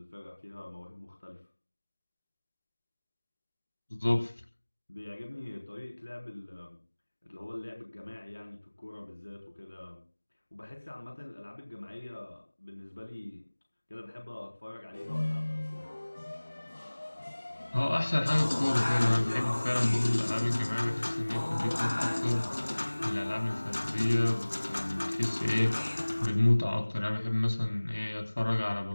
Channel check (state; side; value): inverted; both; correlation -1.00